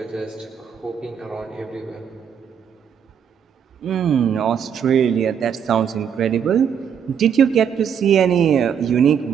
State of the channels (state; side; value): quieter; left; 7.8 dB